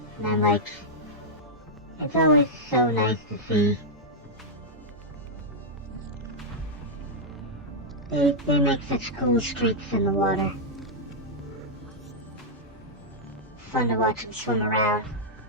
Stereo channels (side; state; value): both; normal; correlation -0.05